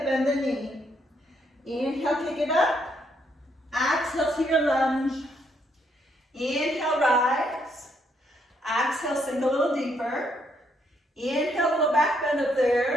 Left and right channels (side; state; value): both; normal; correlation 0.73